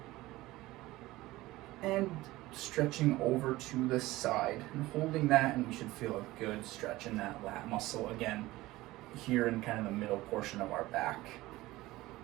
and stretching over to the side and holding that, and we should feel a good stretch in that lat muscle again here in kind of the middle portion of our back.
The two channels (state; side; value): quieter; left; 18.3 dB